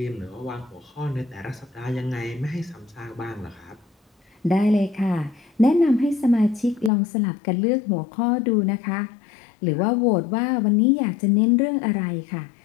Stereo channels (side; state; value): right; drops out; at 6.9 s